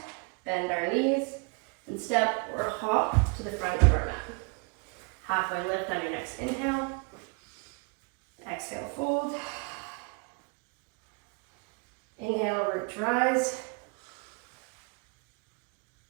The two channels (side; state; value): left; quieter; 32.2 dB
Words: bend our knees, and step or hop to the front of our mat. Halfway lift on your next inhale. Exhale, fold. Inhale, root to rise.